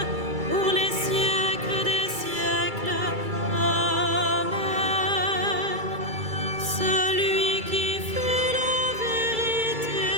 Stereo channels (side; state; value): left; late; 2.3 ms